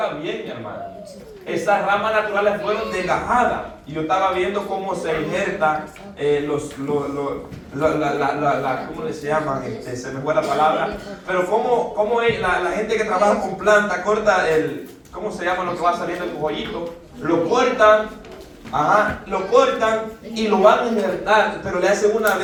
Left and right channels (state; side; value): identical; both; correlation 1.00